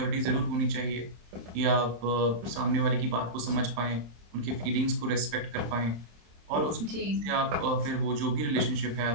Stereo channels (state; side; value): late; left; 27 ms